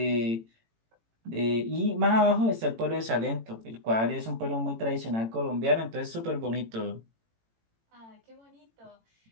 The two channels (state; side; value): late; left; 18 ms